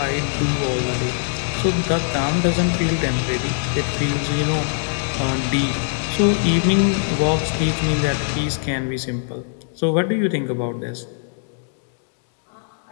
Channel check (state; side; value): silent; right; digital silence